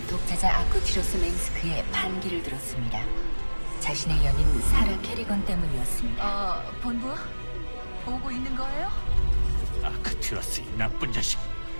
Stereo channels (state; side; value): inverted; both; correlation -1.00